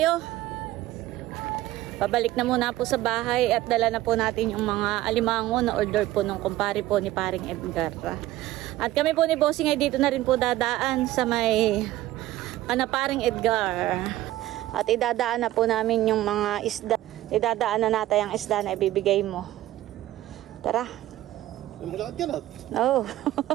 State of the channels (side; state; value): left; quieter; 15.4 dB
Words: Pabalik na muna po sa bahay at dala na po natin yung mga alimango na order po nung kumpare po ni paring Edgar. At kami po ni Bossing ay dito na rin po dadaan sa may paring Edgar. At idadaan na po namin yung mga isda. Idadaan na natin ang isda na ibibigay mo. Tara. Malakad ka na. Oo.